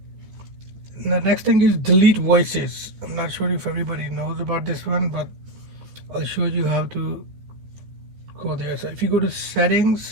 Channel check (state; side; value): late; left; 13 ms